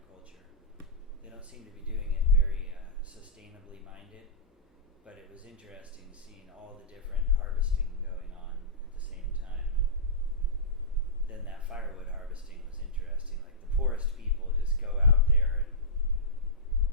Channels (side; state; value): both; normal; correlation -0.15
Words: They don't seem to be doing it very sustainably minded, but it was interesting seeing all the different harvesting going on at the same time. And then that firewood harvesting was interesting. Like the poorest people just go out there and